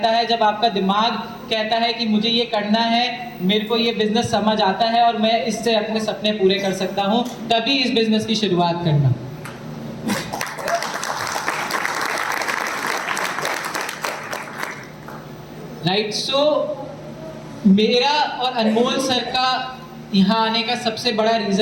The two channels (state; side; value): identical; both; correlation 1.00